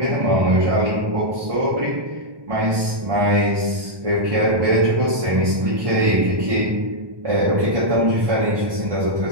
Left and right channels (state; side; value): late; left; 1.2 ms